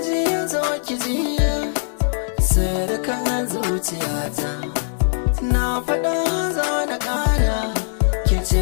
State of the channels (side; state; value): right; silent; digital silence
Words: ji zo ki ji sirkan zuciyata, na fada za na kara, ki ce